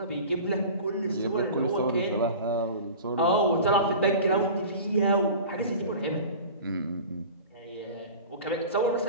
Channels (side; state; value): both; inverted; correlation -0.37